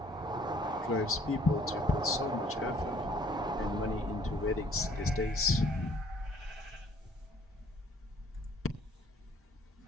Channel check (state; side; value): normal; both; correlation 0.59